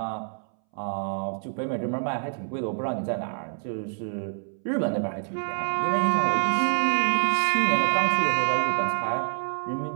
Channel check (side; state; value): left; silent; 61 dB below the other